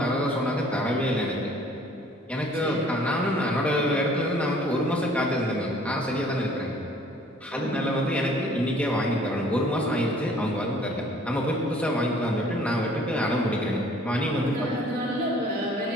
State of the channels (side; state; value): both; normal; correlation 0.55